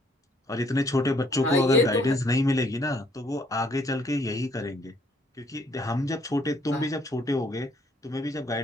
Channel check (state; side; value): normal; both; correlation 0.65